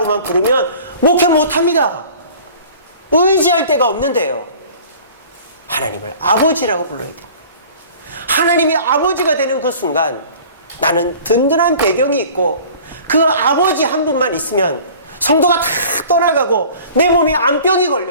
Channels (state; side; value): inverted; both; correlation -0.46